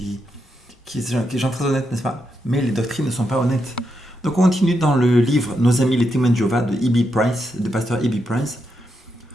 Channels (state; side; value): normal; both; correlation 0.83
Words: sont très honnêtes, n'est-ce pas? Mais les doctrines ne sont pas honnêtes. Donc, on continue dans le livre Nos amis les témoins de Jéhovah de E.B. Price, de pasteur E.B. Price.